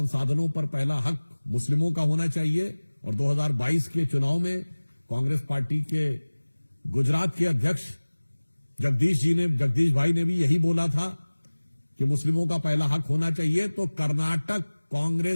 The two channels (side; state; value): both; inverted; correlation -1.00